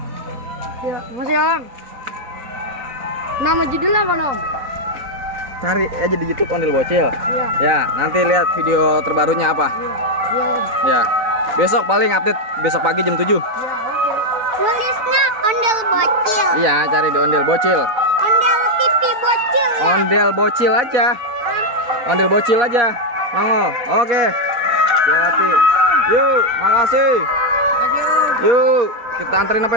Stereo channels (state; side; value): late; left; 4.5 ms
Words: Ya, masih Om. Nama judulnya apa, Nom? Cari aja di YouTube Ondel Bocil. Iya. Ya, nanti lihat video terbarunya apa. Iya, Om. Ya. Besok paling update besok pagi jam 7. Iya, oke. Tulisnya Ondel Bocil. Iya, cari di Ondel Bocil. Ondel TV Bocil. Ondel Bocil aja. Ondel Bocil aja. Nongol. Oke. Hati-hati. Yuk, makasih. Yuk, kita anterin